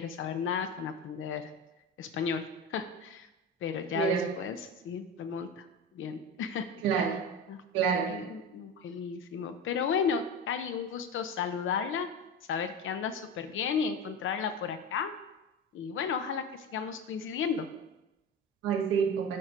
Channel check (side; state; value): both; normal; correlation 0.25